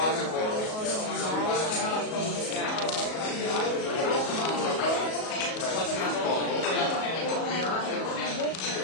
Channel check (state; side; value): late; right; 37 ms